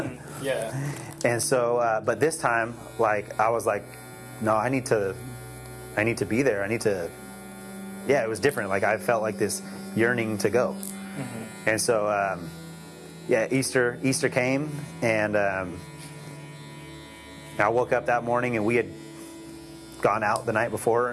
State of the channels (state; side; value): identical; both; correlation 1.00